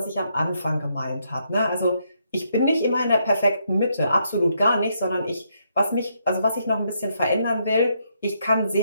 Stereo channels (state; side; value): inverted; both; correlation -0.76